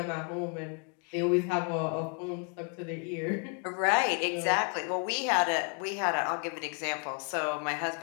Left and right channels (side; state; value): right; quieter; 39.0 dB